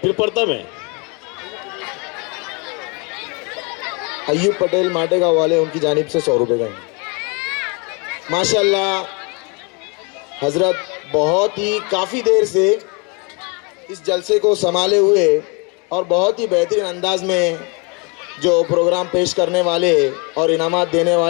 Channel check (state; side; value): quieter; right; 31.2 dB